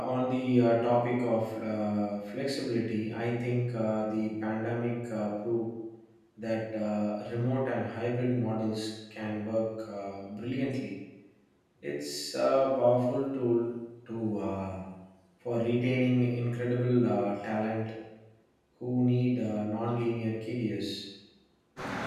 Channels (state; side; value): identical; both; correlation 1.00